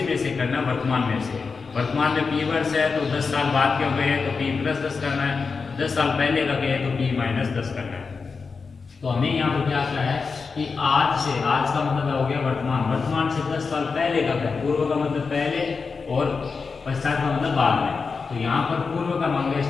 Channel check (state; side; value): quieter; right; 4.9 dB